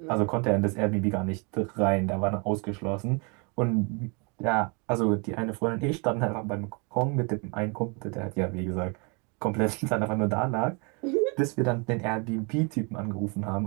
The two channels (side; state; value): left; quieter; 32.9 dB